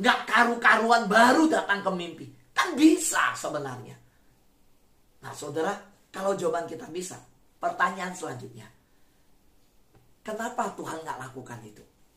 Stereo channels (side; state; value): both; identical; correlation 1.00